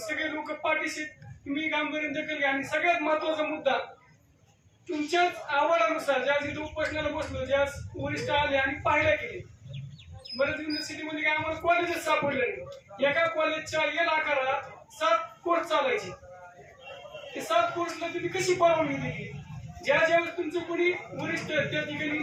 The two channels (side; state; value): both; identical; correlation 1.00